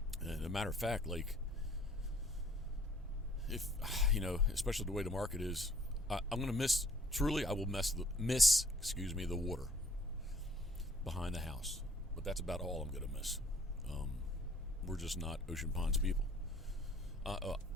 And as a matter of fact, like, if especially the way the market is, I'm going to miss. Truly, I will miss the water behind the house. But that's about all I'm going to miss. We're just not Ocean Ponds people.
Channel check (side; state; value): both; normal; correlation 0.58